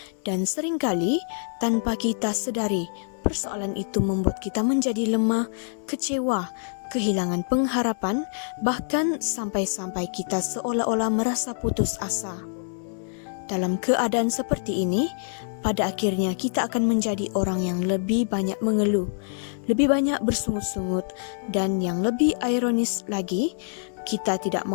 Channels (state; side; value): silent; right; digital silence